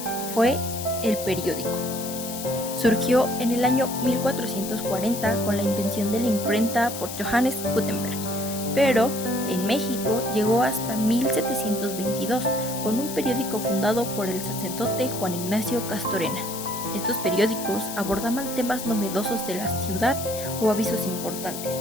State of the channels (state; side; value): noise; left; hiss, 8 dB below the sound